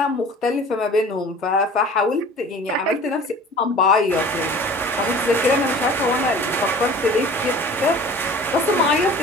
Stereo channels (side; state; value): both; normal; correlation 0.44